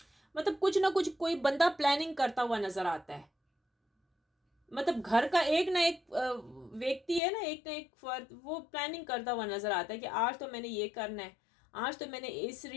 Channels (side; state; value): right; drops out; at 7.2 s